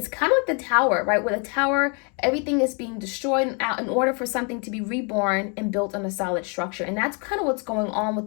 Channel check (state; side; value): quieter; right; 35.5 dB